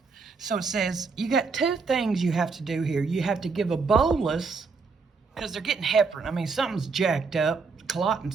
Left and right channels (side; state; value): left; quieter; 4.7 dB